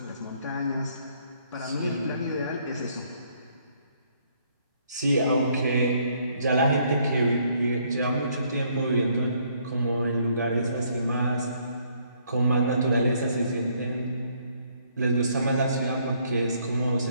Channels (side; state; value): both; inverted; correlation -0.67